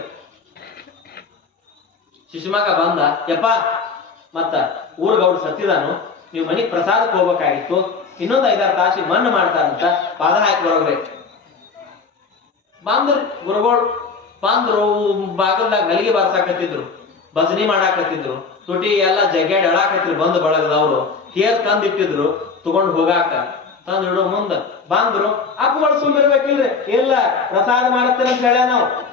ಶಿಶುಮಗ ಬಂದ, ಯಪ್ಪ ಮತ್ತ ಊರ್ಗೌಡ್ ಸತ್ತಿದಾನು, ನೀವು ಮನಿಗ್ ಪ್ರಸಾದಕ್ಕೆ ಹೋಗ್ಬೇಕಾಗಿತ್ತು, ಇನ್ನೊಂದು 5-6 ತಾಸಿಗೆ ಮಣ್ಣು ಮಾಡ್ತಾರಂತ, ಪಾದ ಹಾಕಿ ಬರೋಗ್ರಿ. ಬಂದ್ರಿ ಗುರುಗಳು, ಬಂದ್ರು, ಬಾಗಲ್ದಾಗ ಹಲಿಗೆ ಬಾರ್ಸಾಕತ್ತಿದ್ರು, ಭಜನಿ ಮಾಡಾಕತ್ತಿದ್ರು, ತುಟಿ ಎಲ್ಲ ಜಗ್ಗಾಡಿ ಅಳಾಕತ್ತಿದ್ರು. ಬಂದು ಬಳಗದವ್ರು ತೇರ್ ತಂದಿಟ್ಟಿದ್ರು ತಗೊಂಡು ಹೋಗಾಕ. ತಂದು ಇಡೋ ಮುಂದ ಬಂದ್ರು, ಅಪ್ಪಗಳು ಸುಮ್ಮಿರ್ಬೇಕಿಲ್ರಿ, ಇಲ್ಲ ಪ್ರಸಾದ ಮಾಡತ್ತೇನೆ ಅಂತ ಹೇಳ, ನಾವು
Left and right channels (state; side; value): quieter; right; 4.9 dB